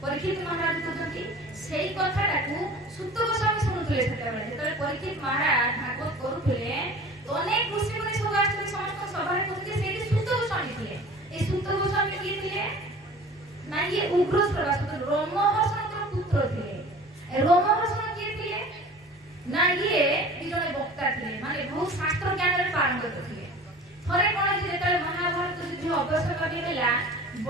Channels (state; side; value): normal; both; correlation 0.42